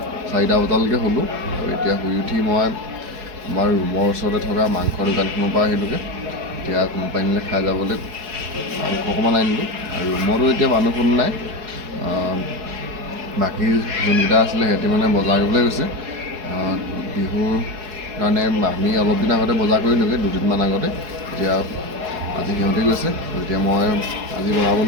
4টা বজালৈকে হ'লোঁ আৰু এতিয়া শুই উঠি মই আমাৰ ৰুমৰ ওচৰতে থকা মাংসৰ দোকানখনৰ পৰা আহিলোঁগৈ। এতিয়া কোম্পানীলৈ খাই যাবলৈ মাংস অকণমান আনিলোঁ আৰু ৰুমতো এতিয়া মানুহ কোনো নাই। বাকী যোনকেইটা আছিলে সিহঁতি মানে বজাৰ কৰিবলৈ গৈছে বিহুৰ কাৰণে। আমি অলপ দিন আগতে বজাৰ কৰিলোঁগৈ, 2দিনমান আগতে। এতিয়া আজি সিহঁতে গৈছে। এতিয়া মই আজি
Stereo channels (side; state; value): left; late; 4.7 ms